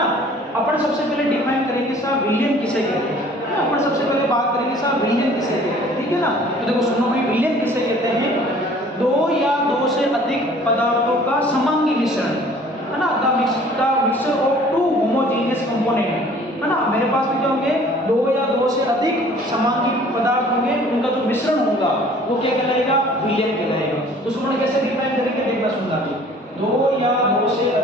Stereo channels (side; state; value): both; normal; correlation 0.52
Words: अपन सबसे पहले डिफाइन करेंगे साहब विलियन किसे कहते हैं ना, अपन सबसे पहले बात करेंगे साहब विलियन किसे कहते हैं। ठीक है ना, तो देखो सुनो भाई, विलियन किसे कहते हैं? दो या दो से अधिक पदार्थों का समांगी मिश्रण है ना, the mixture of two homogeneous component है ना। मेरे पास में क्या होंगे? दो या दो से अधिक समांगी पदार्थ होंगे, उनका जो मिश्रण होगा वो क्या कहलाएगा? विलियन कहलाएगा। तो सुनो कैसे डिफाइन करेंगे, देखना सुनना जी। दो या दो से